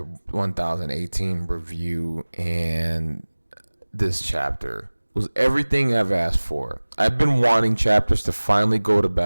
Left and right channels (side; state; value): both; inverted; correlation -1.00